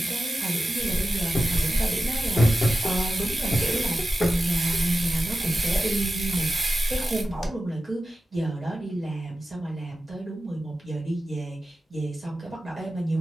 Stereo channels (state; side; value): normal; both; correlation 0.93